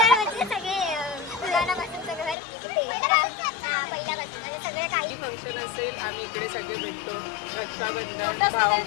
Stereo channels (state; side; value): drops out; right; at 2.4 s